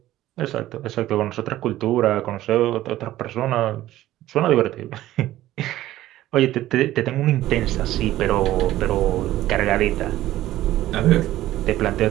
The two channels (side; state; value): left; quieter; 14.7 dB